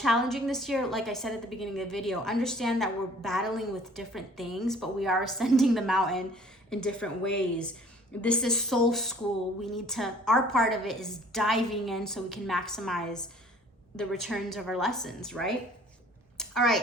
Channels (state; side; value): normal; both; correlation 0.53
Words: this year, like I said at the beginning of the video, understand that we're battling with different things, but we are ascending the mountain in different ways. This is soul school. We need to, our part of it is diving in so we can maximize the returns of our lessons, right? All